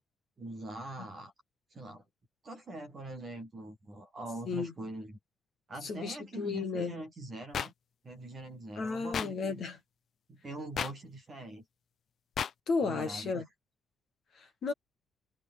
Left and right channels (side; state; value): right; quieter; 3.4 dB